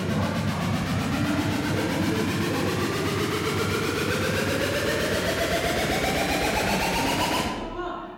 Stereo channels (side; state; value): both; identical; correlation 1.00